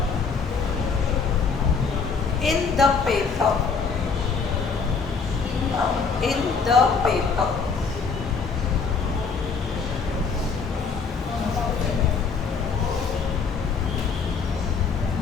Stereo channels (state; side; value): quieter; right; 5.2 dB